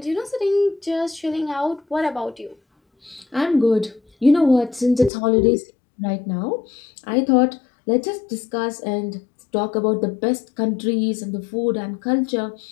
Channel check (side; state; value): right; drops out; at 5.1 s